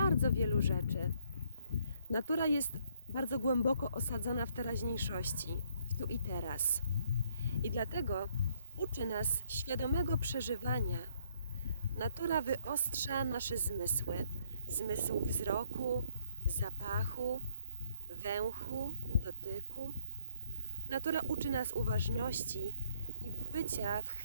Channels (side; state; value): both; inverted; correlation -0.68